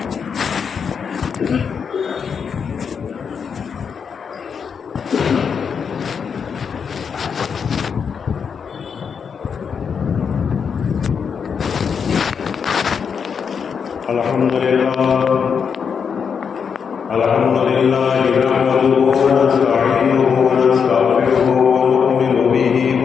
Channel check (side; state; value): right; quieter; 6.5 dB